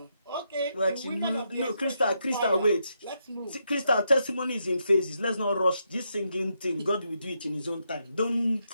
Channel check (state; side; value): inverted; both; correlation -0.81